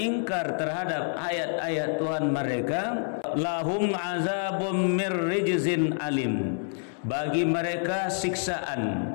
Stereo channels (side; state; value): right; silent; 60 dB below the other